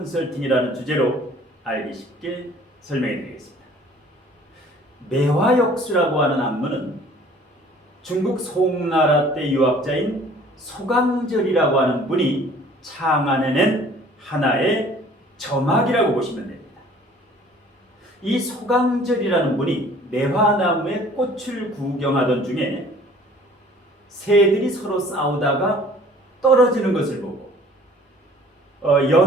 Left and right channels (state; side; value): normal; both; correlation 0.52